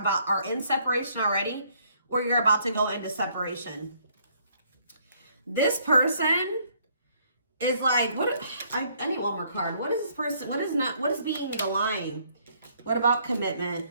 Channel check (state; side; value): inverted; both; correlation -0.66